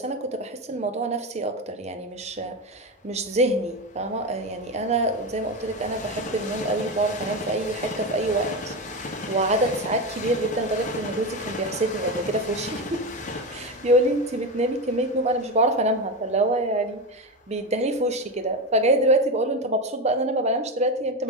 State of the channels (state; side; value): normal; both; correlation 0.17